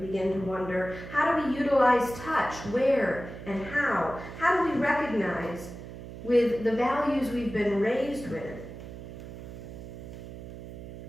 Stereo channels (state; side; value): noise; right; hum, 12 dB below the sound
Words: begin to wonder. How do we utilize touch, where and how? How do we recognize with the values we've been raised with